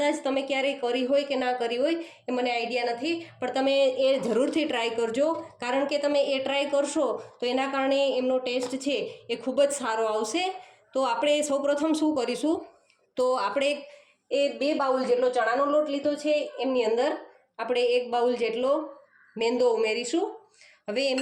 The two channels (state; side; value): identical; both; correlation 1.00